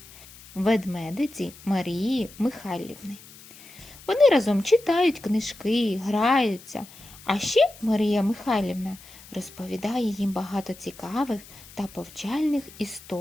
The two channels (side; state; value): left; noise; hiss, 20 dB below the sound